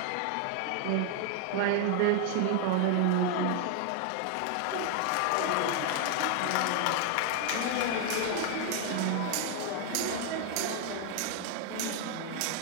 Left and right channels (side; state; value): both; different; correlation 0.00